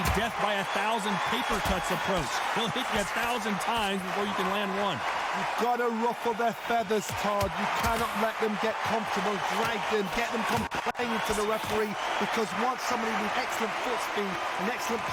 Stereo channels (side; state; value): both; identical; correlation 1.00